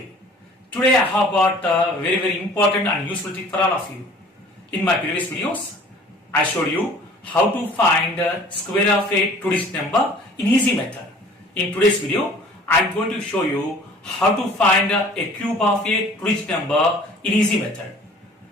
Today I have got a very important and useful tip for all of you. In my previous videos, I showed you how to find square of a two-digit number in easy method. In today's video, I am going to show you how to find a cube of a two-digit number in easy method.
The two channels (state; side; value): normal; both; correlation 0.49